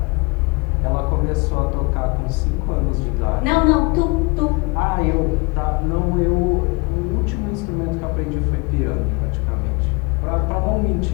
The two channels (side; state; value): right; quieter; 28.0 dB